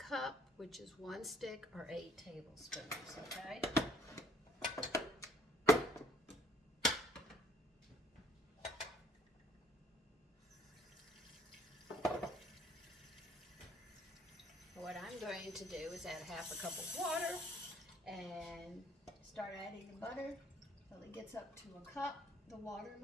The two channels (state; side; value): normal; both; correlation 0.60